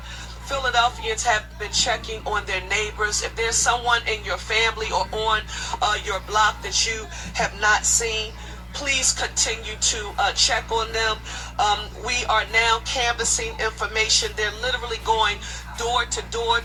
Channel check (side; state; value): both; identical; correlation 1.00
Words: Philadelphians have been checking on their neighbors. If there's someone in your family or on your block that you have not seen, please continue to check on them. We are now canvassing information. They're literally going door to door